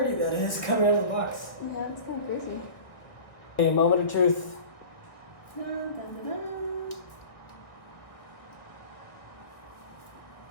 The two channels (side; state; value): right; late; 1.4 ms